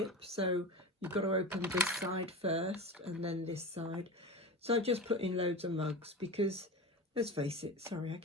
so you've got to open this side first and then this side. So I just put in loads of mugs because, let's face it, sorry, I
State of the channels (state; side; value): normal; both; correlation 0.27